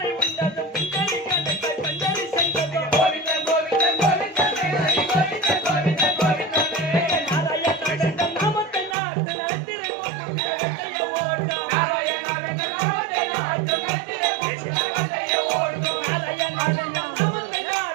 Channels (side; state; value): left; drops out; at 9.0 s